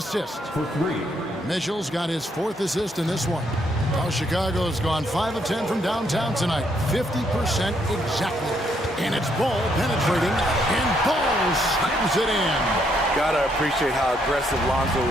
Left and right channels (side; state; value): both; normal; correlation 0.73